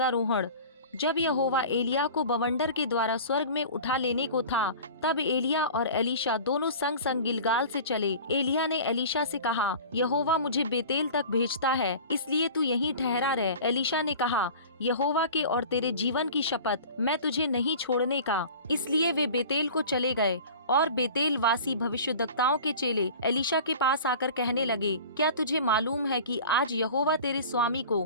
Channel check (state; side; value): inverted; both; correlation -0.39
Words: जब यहोवा एलिया को बवंडर के द्वारा स्वर्ग में उठा लेने को था, तब एलिया और एलीशा दोनों संग संग गिलगाल से चले। एलिया ने एलीशा से कहा, यहोवा मुझे बेतेल तक भेजता है, इसलिए तू यहीं ठहरा रह। एलीशा ने कहा, यहोवा के और तेरे जीवन की शपथ, मैं तुझे नहीं छोड़ने का। इसलिए वे बेतेल को चले गए और बेतेल वासी भविष्यद्वक्ताओं के चेले एलीशा के पास आकर कहने लगे, क्या तुझे मालूम है कि आज यहोवा तेरे स्वामी